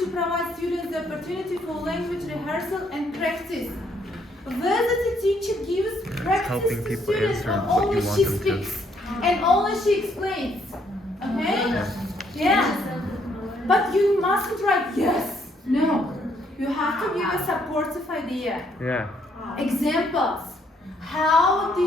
provide students the opportunity for language rehearsal and practice? Whether the teacher gives practice helping to people students answer or what you only want she them to. speaks and only she explains. Okay? Yeah. But you mustn't write yes. No. You have to give a supportive idea. Yeah. Examples. How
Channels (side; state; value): both; normal; correlation 0.70